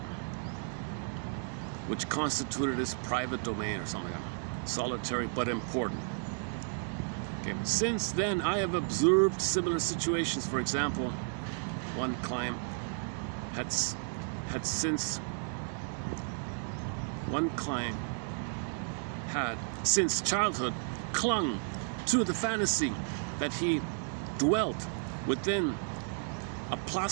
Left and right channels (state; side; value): silent; left; 56 dB below the other